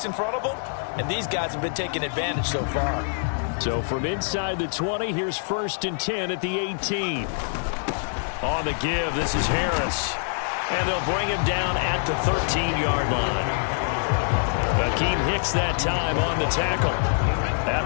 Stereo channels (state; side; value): silent; right; 59 dB below the other